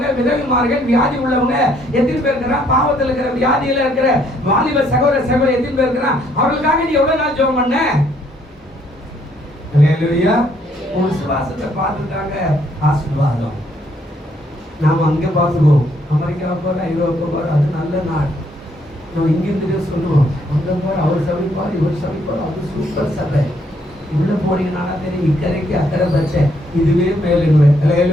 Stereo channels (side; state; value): both; normal; correlation 0.68